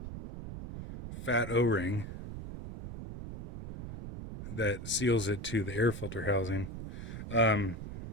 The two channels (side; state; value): right; noise; rumble, 9 dB below the sound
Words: fat O-ring that seals it to the air filter housing.